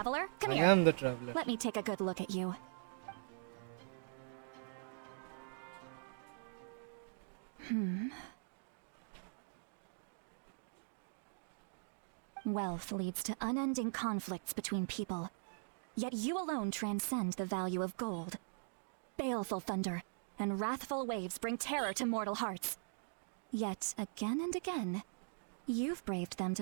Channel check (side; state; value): left; silent; digital silence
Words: come I here. am the traveler. Let me take a good look at you. Wealth leads to unending conflicts between people. Yet you alone transcend the value of gold. Baleful thunder and wrathful waves bring terror to mortal hearts. Yet again and again, you've braved them